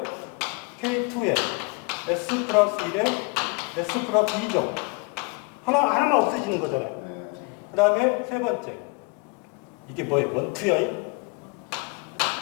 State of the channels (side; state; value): right; quieter; 30.3 dB